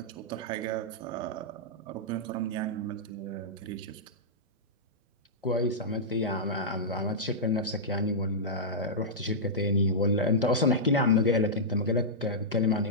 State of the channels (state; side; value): normal; both; correlation -0.11